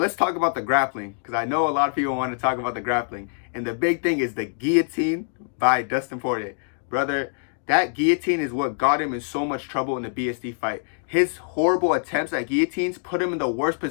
let's talk about the grappling, because I know a lot of people want to talk about the grappling. And the big thing is the guillotine by Dustin Poirier. Brother, that guillotine is what got him in so much trouble in the BSD fight. His horrible attempts at guillotines put him in the worst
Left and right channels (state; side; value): silent; right; digital silence